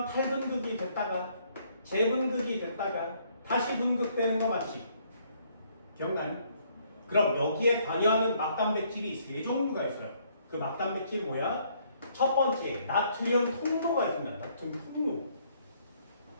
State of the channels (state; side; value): inverted; both; correlation -0.66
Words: 탈분극이 됐다가 재분극이 됐다가 다시 분극되는 거 맞지? 기억나니? 그럼 여기에 관여하는 막단백질이 세 종류가 있어요. 그 막단백질이 뭐야? 첫 번째, 나트륨 통로가 있습니다. 나트륨 통로.